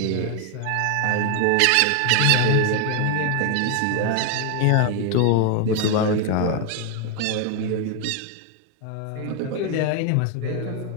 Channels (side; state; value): both; different; correlation 0.01